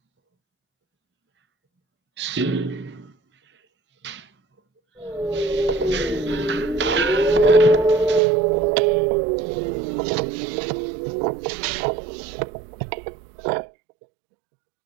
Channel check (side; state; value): left; drops out; at 8.2 s